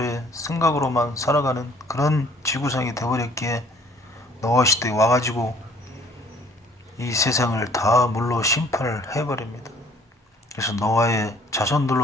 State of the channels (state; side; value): normal; both; correlation 0.57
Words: 생각으로만 살아가는 그런 지구상이 되어버렸기에 노아 시대에 와가지고 이 세상을 다 물로 심판을 해버립니다. 그래서 노아의